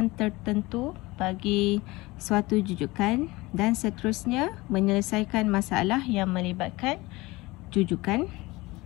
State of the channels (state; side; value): quieter; right; 21.5 dB